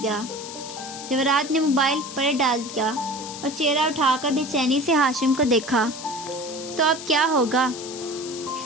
جواہرات نے موبائل پر ڈال دیا اور چہرہ اٹھا کر بے چینی سے ہاشم کو دیکھا۔ تو اب کیا ہوگا؟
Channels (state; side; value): noise; left; hiss, 11 dB below the sound